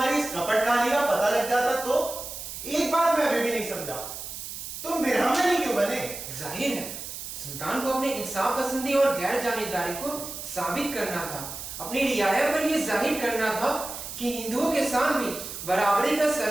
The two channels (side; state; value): right; noise; hiss, 9 dB below the sound